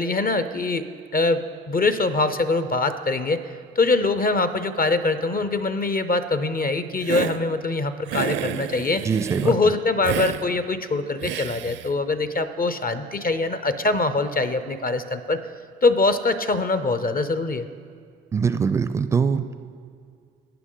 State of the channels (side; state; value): both; normal; correlation 0.42